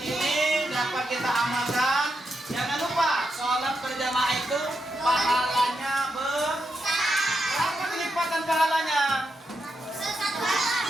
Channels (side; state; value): both; normal; correlation 0.85